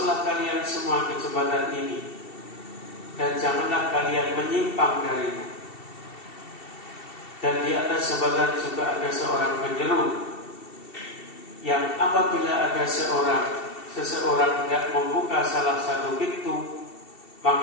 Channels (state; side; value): late; right; 2.7 ms